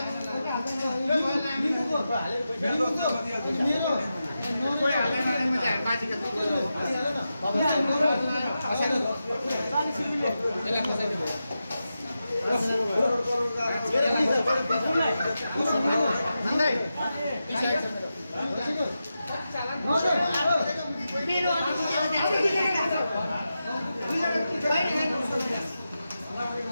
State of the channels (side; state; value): both; inverted; correlation -0.90